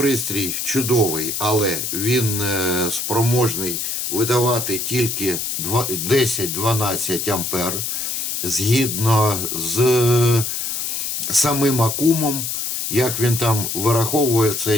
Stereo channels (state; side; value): noise; left; hiss, 2 dB below the sound